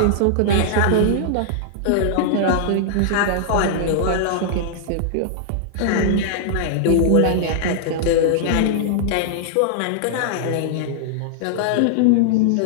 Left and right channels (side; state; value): both; different; correlation -0.01